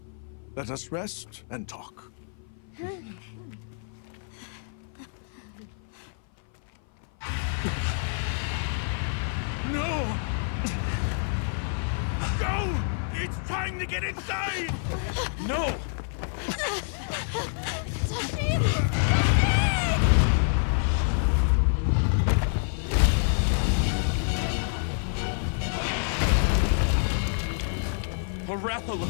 Let us rest and talk. No! Go! It's time to get inside! No!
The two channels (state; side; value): silent; right; 57 dB below the other